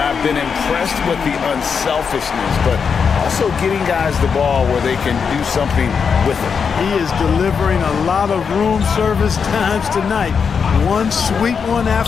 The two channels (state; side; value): quieter; right; 6.2 dB